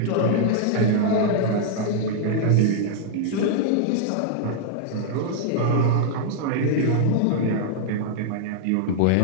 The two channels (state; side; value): different; both; correlation -0.01